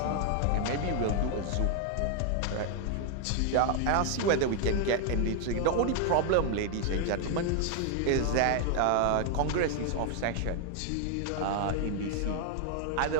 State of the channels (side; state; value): both; different; correlation 0.00